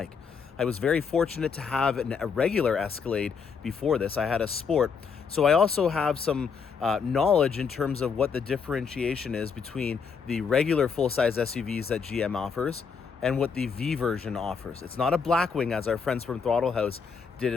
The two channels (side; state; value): right; quieter; 5.9 dB